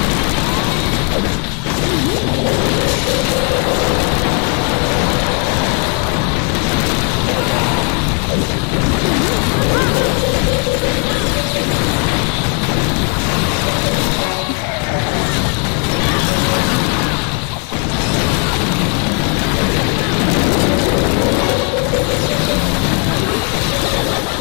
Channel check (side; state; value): right; quieter; 38.4 dB